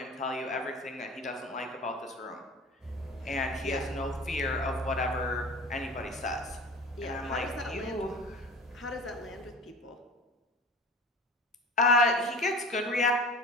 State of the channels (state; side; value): normal; both; correlation 0.38